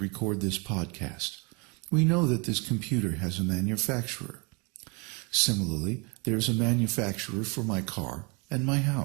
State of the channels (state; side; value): quieter; left; 30.6 dB